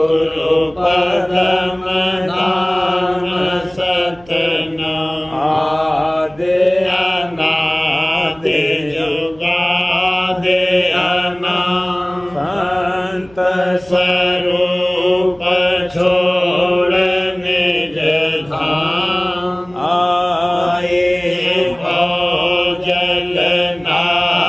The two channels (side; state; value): right; noise; hum, 26 dB below the sound